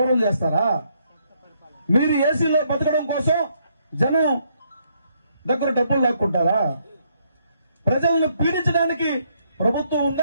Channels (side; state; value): both; inverted; correlation -0.73